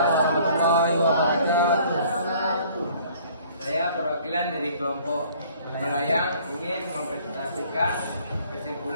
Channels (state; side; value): inverted; both; correlation -0.56